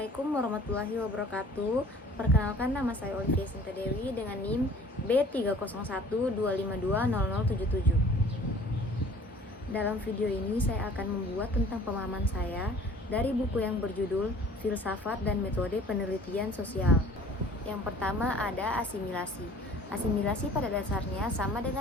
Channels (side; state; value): both; normal; correlation 0.50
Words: Assalamualaikum warahmatullahi wabarakatuh. Perkenalkan, nama saya Olivia Sinta Dewi dengan NIM B30125200077. Dalam video ini saya akan membuat tentang pemahaman saya dari buku yang berjudul Filsafat dan Metode Penelitian Sosial. Yang pertama ada asimilasi. Asimilasi pada dasarnya sama